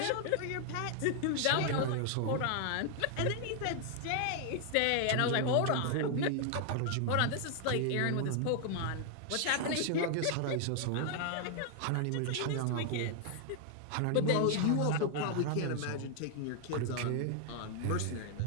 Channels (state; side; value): different; both; correlation 0.00